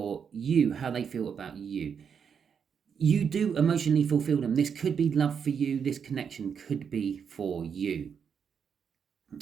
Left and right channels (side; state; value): left; quieter; 7.0 dB